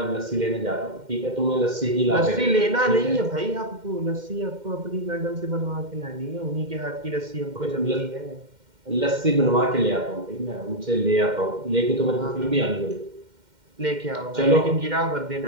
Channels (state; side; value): late; left; 2.1 ms